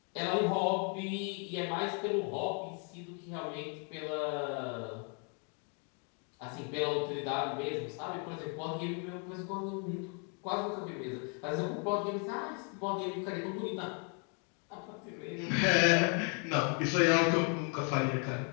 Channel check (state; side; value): quieter; right; 38.9 dB